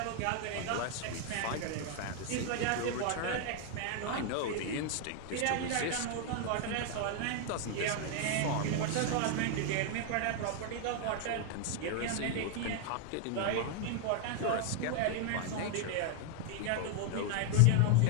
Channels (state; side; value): different; both; correlation 0.00